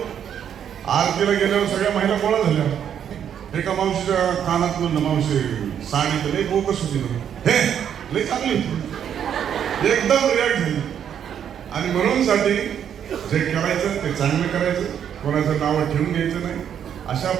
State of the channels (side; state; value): left; quieter; 8.9 dB